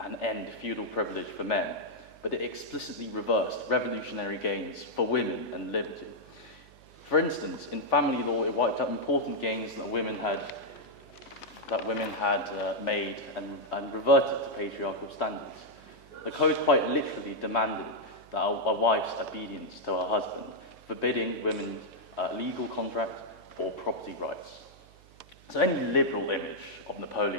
and end feudal privilege for men, but it explicitly reversed revolutionary gains for women and liberty. For instance, in family law, it wiped out important gains that women had made and reverted to patriarchal standards. The Code quite literally demanded that a wife's obedience to her husband, forbidding women's legal contract or property rights. So any liberal image of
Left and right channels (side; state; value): right; noise; hum, 25 dB below the sound